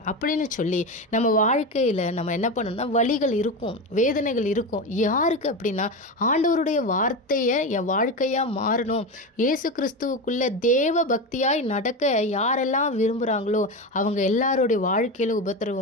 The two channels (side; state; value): both; normal; correlation 0.19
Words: அப்படின்னு சொல்லி நம்ம வாழ்க்கையில் நம்ம என்ன பண்ணணும்னா, வலிகள் இருக்கும், வேதனைகள் இருக்கும். யாருக்கு அப்படின்னா, ஆண்டவருடைய வார்த்தையை என் வாழ்க்கையாக மாறணும், இயேசு கிறிஸ்துவுக்குள்ள தேவ பக்தியாய் நடக்க யாரெல்லாம் விரும்புகிறாங்களோ அவங்க எல்லாருடைய வாழ்க்கையில்